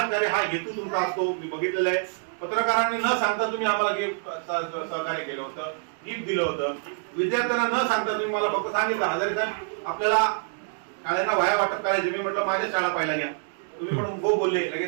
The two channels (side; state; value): left; silent; digital silence